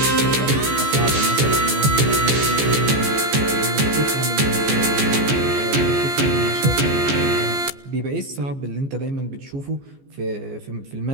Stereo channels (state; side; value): late; left; 14 ms